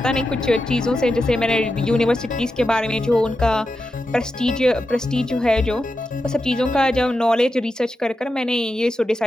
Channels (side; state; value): both; normal; correlation 0.89